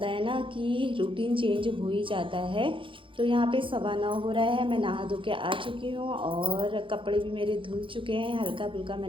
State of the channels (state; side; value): late; left; 0.25 ms